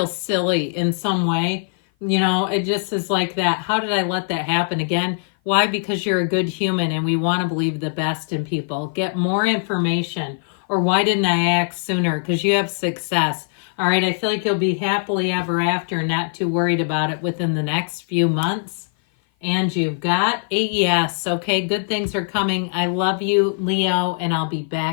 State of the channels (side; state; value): right; silent; 56 dB below the other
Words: silly in some way. You know, it just is like that. How did I let that happen again? Why? Because you're a good human and we want to believe the best in people. Get more information. Or why didn't I act sooner? Because you have success. All right, I feel like you'll be happily ever after, not too worried about it within the next few months. And you've got a yes. Okay, good things are coming. I love you, Leo, and I'll be